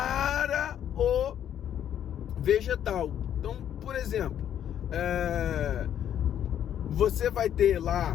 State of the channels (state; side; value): quieter; right; 10.0 dB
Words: o vegetal. Então, por exemplo, você vai ter